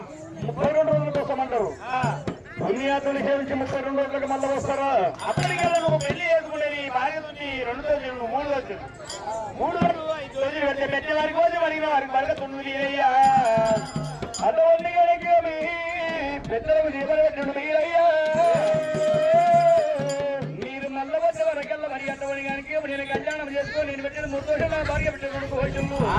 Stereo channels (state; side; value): identical; both; correlation 1.00